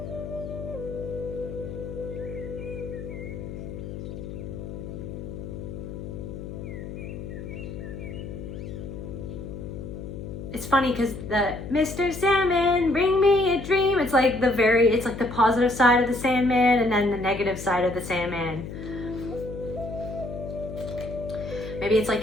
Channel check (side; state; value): left; noise; hum, 9 dB below the sound